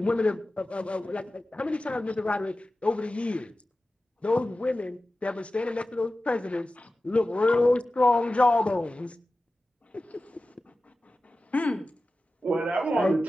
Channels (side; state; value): both; normal; correlation 0.95